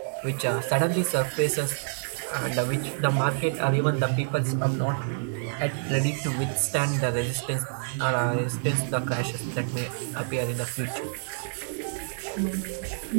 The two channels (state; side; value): silent; left; digital silence